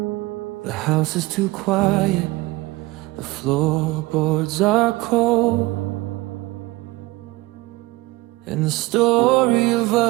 The house is too quiet, the floorboards are cold, and the story of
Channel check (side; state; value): left; quieter; 20.5 dB